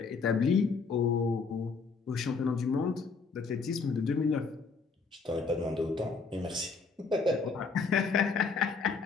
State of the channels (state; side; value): quieter; right; 4.8 dB